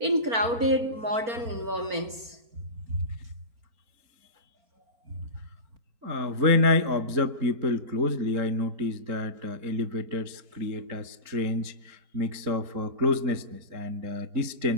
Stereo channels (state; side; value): late; left; 4.4 ms